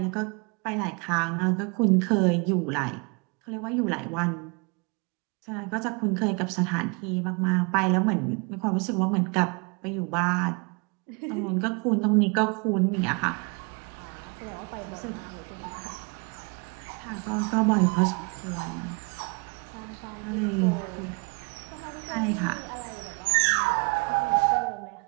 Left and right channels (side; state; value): left; quieter; 31.6 dB